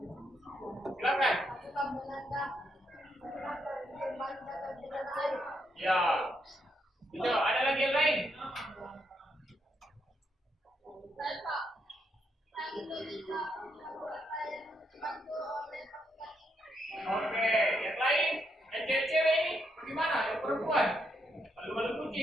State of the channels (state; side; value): normal; both; correlation 0.78